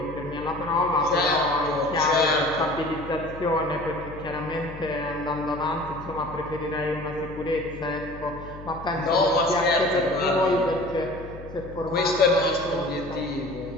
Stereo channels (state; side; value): noise; left; hum, 14 dB below the sound